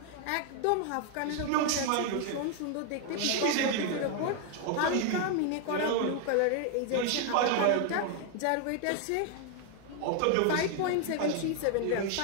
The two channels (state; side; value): different; both; correlation 0.00